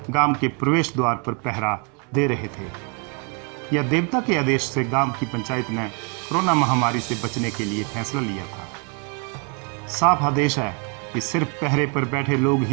गांव के प्रवेश द्वार पर पहरा दे रहे थे। यह देवता के आदेश से गांव की पंचायत ने कोरोना महामारी से बचने के लिए फैसला लिया था। साफ आदेश है कि सिर्फ पहरे पर बैठे लोग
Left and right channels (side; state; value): left; quieter; 33.9 dB